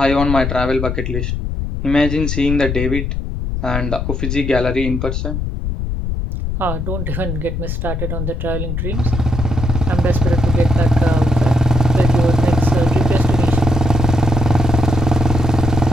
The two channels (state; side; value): noise; left; rumble, 3 dB below the sound